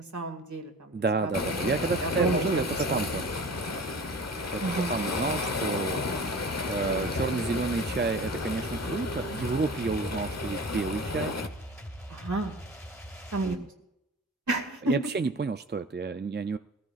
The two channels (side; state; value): both; normal; correlation 0.38